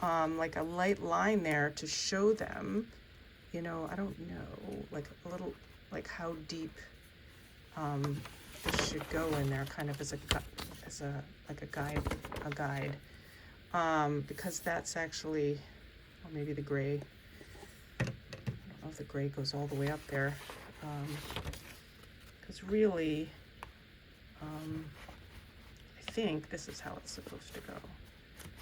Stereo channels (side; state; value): both; identical; correlation 1.00